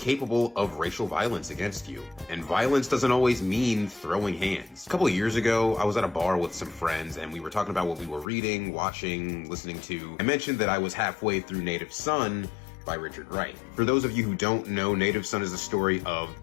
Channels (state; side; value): drops out; right; at 8.2 s